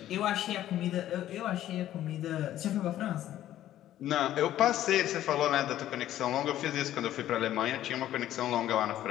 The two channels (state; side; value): quieter; right; 12.8 dB